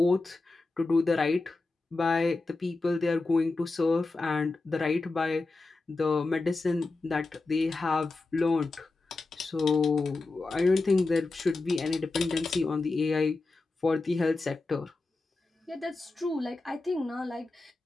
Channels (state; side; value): quieter; right; 3.4 dB